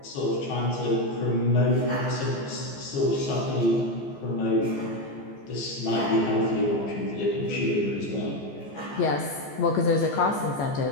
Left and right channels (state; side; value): late; right; 14 ms